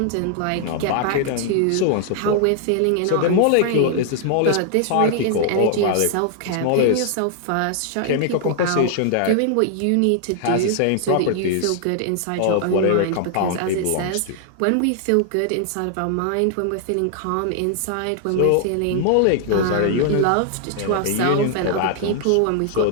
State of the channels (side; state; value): both; different; correlation 0.00